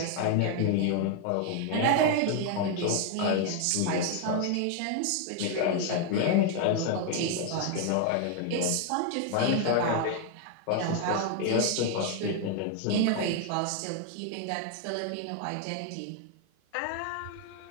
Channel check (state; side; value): different; both; correlation 0.00